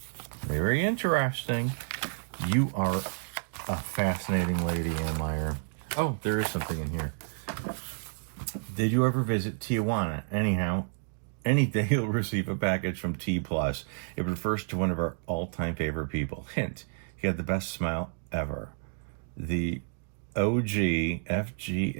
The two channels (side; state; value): left; silent; digital silence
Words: Very interesting. You are a fascinating lady, Ann Meyer. Oh, there is something in here. Did you ever visit Tijuana? Anyhow, any day you'll receive a package from T+. It refers to one of our all-time favorite people. Hint, he had the best smile ever. The OG